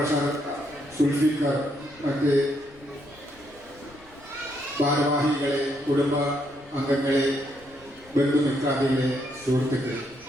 സുൽഫിക്കർ, മറ്റ് ഭാരവാഹികളെ, കുടുംബ അംഗങ്ങളെ, ബന്ധുമിത്രാദികളെ, സുഹൃത്തുക്കളെ,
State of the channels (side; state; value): left; noise; rumble, 25 dB below the sound